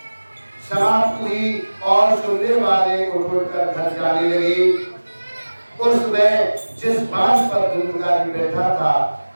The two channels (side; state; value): both; inverted; correlation -1.00